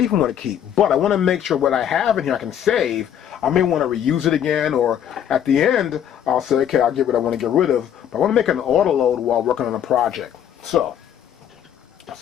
even want to keep, but I want to make sure what I have in here I can save. I may want to reuse it again, or at the end, I'll say, okay, I'll get what I want to get rid of, but I want to make an auto load while working on a project. So,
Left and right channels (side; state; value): right; quieter; 9.6 dB